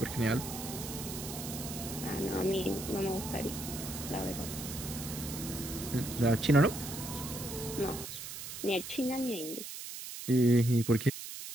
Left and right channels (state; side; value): noise; right; hiss, 8 dB below the sound